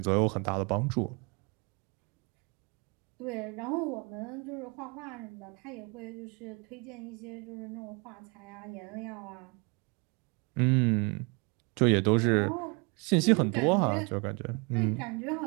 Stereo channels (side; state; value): left; quieter; 31.7 dB